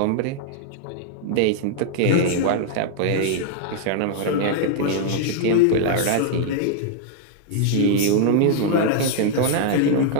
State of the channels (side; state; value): both; different; correlation 0.00